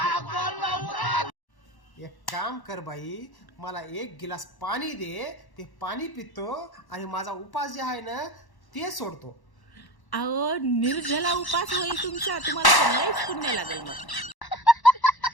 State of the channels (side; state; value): right; late; 1.1 ms